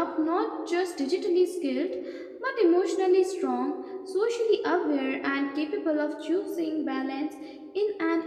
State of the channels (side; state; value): both; identical; correlation 1.00